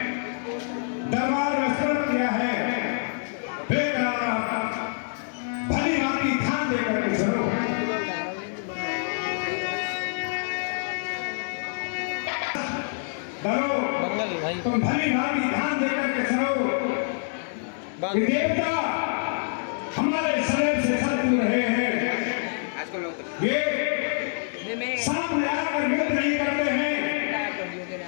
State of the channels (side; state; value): right; silent; digital silence